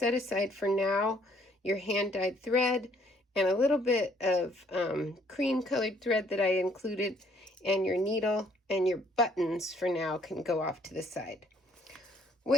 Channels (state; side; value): normal; both; correlation 0.64